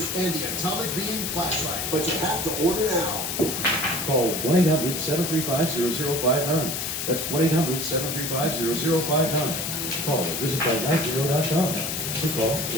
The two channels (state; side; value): noise; left; hiss, 3 dB below the sound